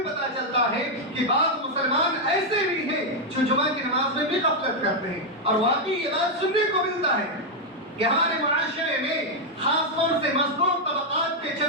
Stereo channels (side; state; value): both; normal; correlation 0.00